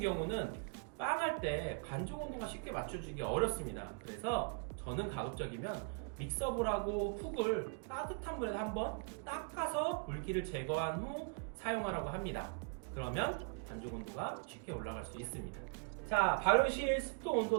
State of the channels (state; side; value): quieter; left; 39.2 dB